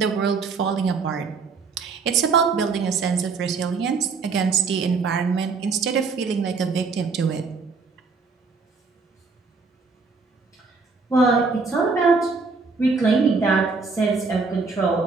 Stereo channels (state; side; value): quieter; left; 4.6 dB